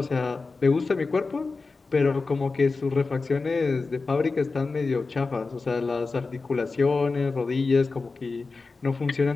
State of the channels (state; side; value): quieter; right; 4.0 dB